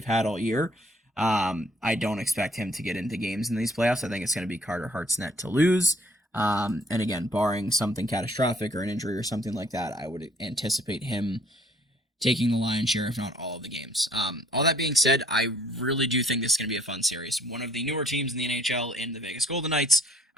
had all year. I don't expect him to get into games in these playoffs. I think it's going to be Carter Hart's net to lose. And again, barring something catastrophic or an injury or something like that, I would anticipate him taking the lion's share, if not all of the games. All that being said, I really do think this is going to be a fun series. One of the newer teams in the NHL in the Vegas Golden Knights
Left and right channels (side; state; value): both; normal; correlation 0.61